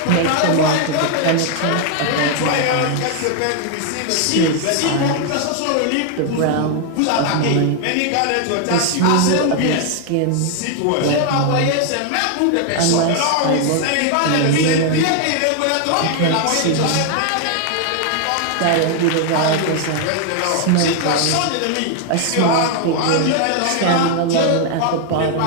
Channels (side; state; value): both; different; correlation 0.00